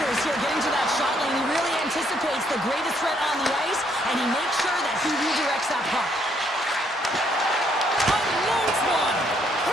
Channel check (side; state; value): both; normal; correlation 0.70